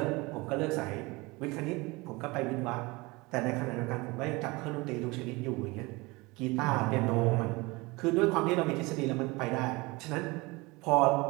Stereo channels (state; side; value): quieter; left; 24.0 dB